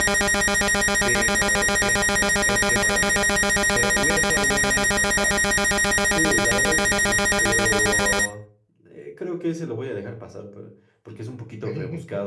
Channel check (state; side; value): identical; both; correlation 1.00